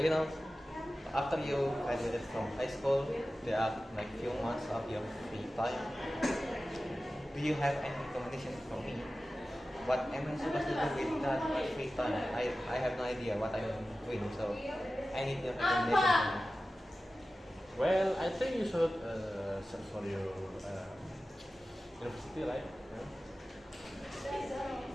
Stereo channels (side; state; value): both; normal; correlation 0.95